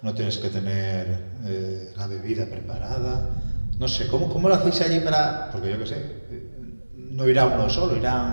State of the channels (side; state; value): both; inverted; correlation -1.00